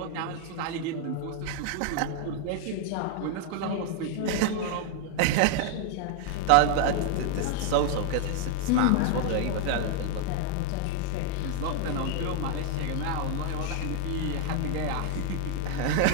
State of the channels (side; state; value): both; different; correlation 0.00